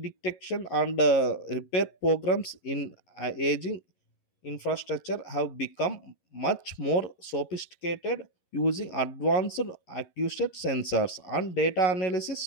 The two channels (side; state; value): right; late; 11 ms